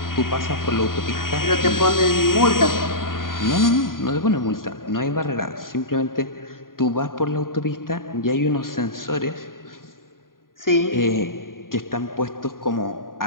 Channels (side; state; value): right; late; 0.91 ms